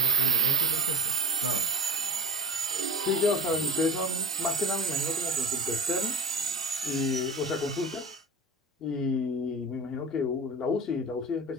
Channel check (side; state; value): both; normal; correlation 0.31